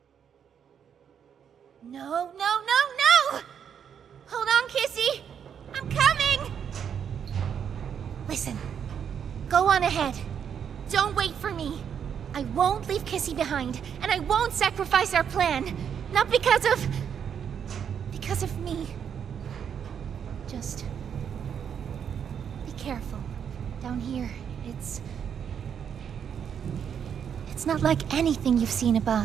No! Hold on, Kissy! I'm coming! Listen, go on ahead. Don't wait for me. I won't leave Kissy behind, and I won't sacrifice our plan. Not because of me. Just be careful. Down here, it's not like anything you've seen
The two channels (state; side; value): quieter; left; 8.0 dB